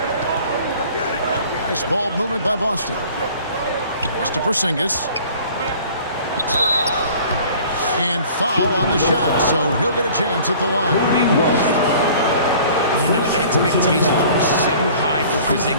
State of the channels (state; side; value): inverted; both; correlation -0.49